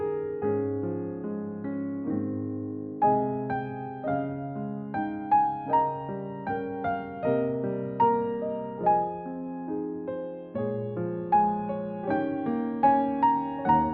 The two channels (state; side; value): identical; both; correlation 1.00